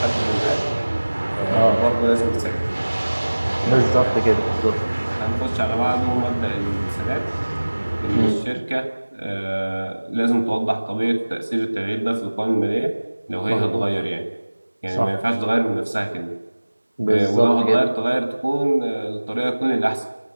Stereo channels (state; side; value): inverted; both; correlation -1.00